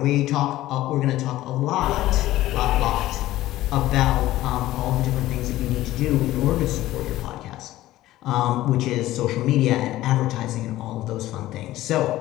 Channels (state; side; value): quieter; right; 15.6 dB